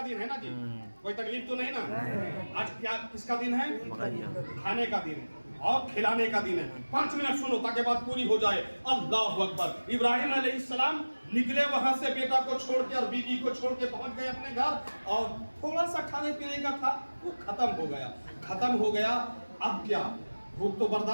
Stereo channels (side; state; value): both; inverted; correlation -1.00